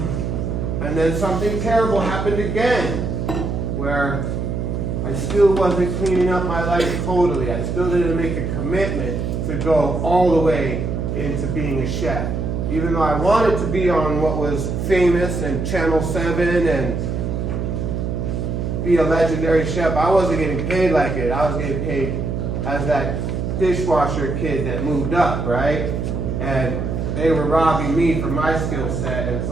then something terrible happened again, where I still wasn't cleaning up my life totally. I still didn't make a commitment to go all the way into being a chef. Even though I wanted to be on what was famous and Channel 7 and be a legendary chef, I wasn't getting paid like it. I was getting paid as that dishwasher kid that moved up, right? And they were robbing me from my skill set, and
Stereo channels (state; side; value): noise; right; hum, 2 dB below the sound